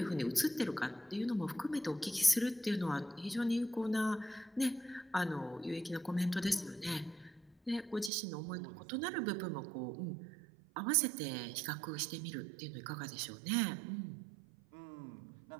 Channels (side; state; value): left; drops out; at 8.1 s